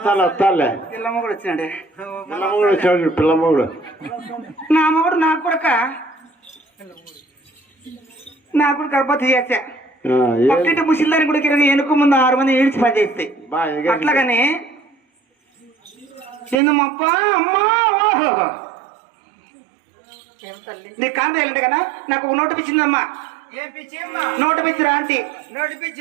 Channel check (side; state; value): left; drops out; at 16.6 s